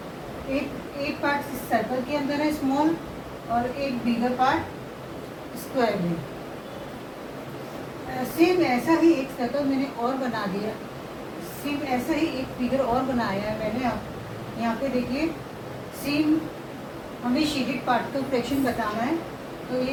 8 पार्ट इस सर्कल के अंदर है स्मॉल, और एक बिगर पार्ट स्क्वायर है। सेम ऐसा ही एक सर्कल मैंने और बना दिया। सेम ऐसा ही एक फिगर और बनाया है मैंने। आप यहाँ पे देखिए, सेम हमें शेडेड पार्ट का फ्रैक्शन बताना है। तो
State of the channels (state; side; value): identical; both; correlation 1.00